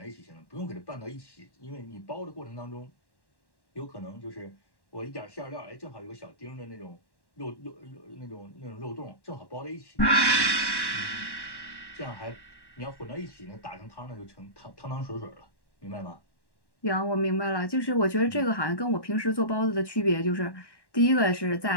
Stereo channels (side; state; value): right; late; 1.1 ms